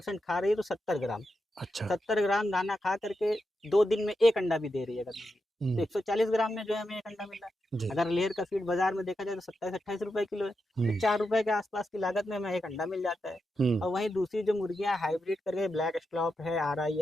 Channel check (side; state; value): both; normal; correlation 0.87